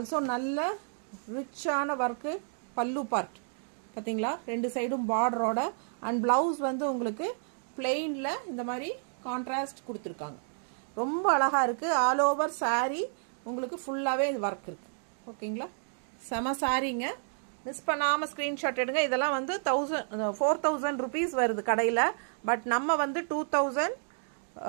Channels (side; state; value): left; silent; digital silence